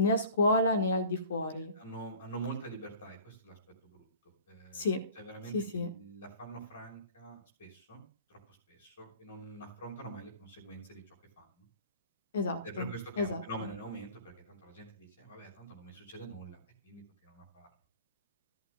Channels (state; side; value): inverted; both; correlation -0.44